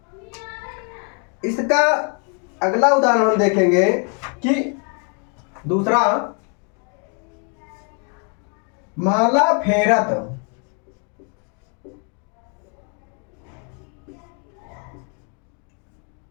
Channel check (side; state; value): right; quieter; 38.9 dB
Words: इसका अगला उदाहरण हम देखेंगे कि दूसरा, माला फेरत